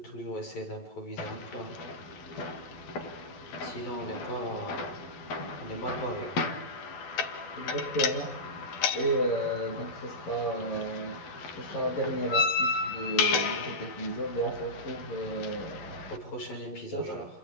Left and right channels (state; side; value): late; right; 12 ms